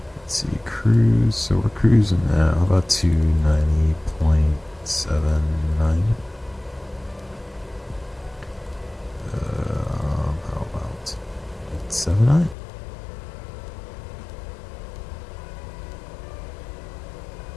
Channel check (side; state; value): right; drops out; at 12.6 s